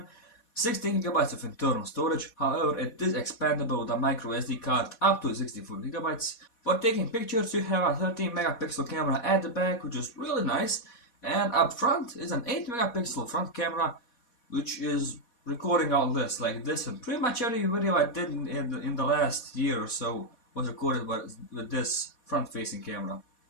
16 GB of internal storage. However, it is expandable with a micro SD card up to 64 GB. For taking pictures, you have a 13 megapixel camera at the back, which is really nice, and up front is an 8 megapixel front camera, which is recording all this like this, and pretty much every video I did in the last year or so was recorded with this front-facing camera,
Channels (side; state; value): right; late; 4.1 ms